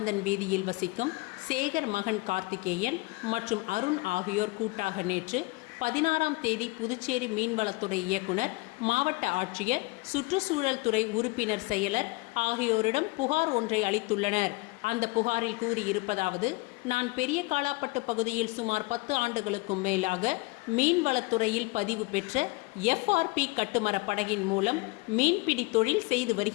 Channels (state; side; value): quieter; right; 24.1 dB